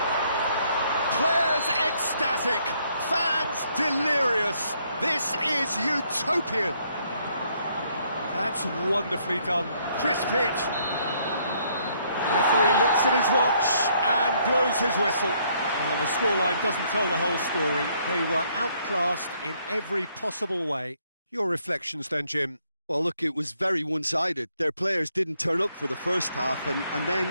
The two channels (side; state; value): both; inverted; correlation -0.69